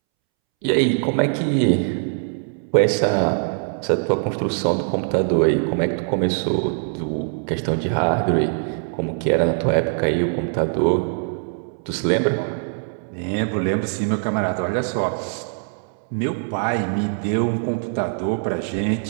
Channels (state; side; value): silent; left; 64 dB below the other